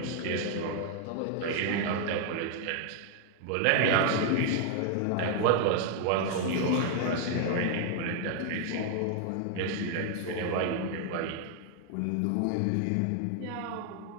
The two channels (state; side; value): different; both; correlation 0.00